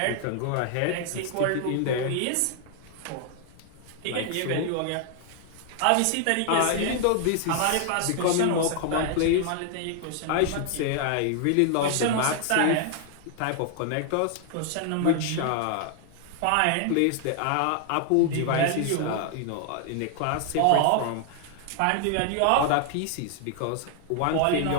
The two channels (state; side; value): different; both; correlation 0.00